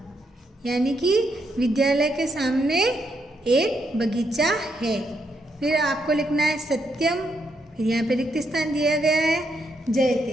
यानी कि विद्यालय के सामने एक बगीचा है। फिर आपको लिखना है सत्यम, फिर यहाँ पे रिक्त स्थान दिया गया है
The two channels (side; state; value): both; normal; correlation 0.78